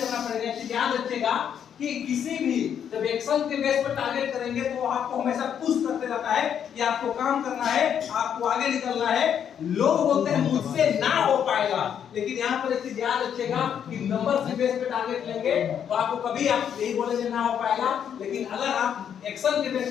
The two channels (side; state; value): right; quieter; 8.6 dB